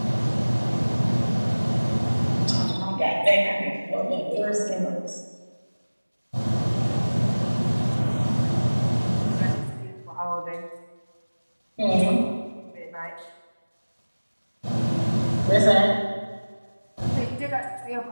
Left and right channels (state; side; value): inverted; both; correlation -1.00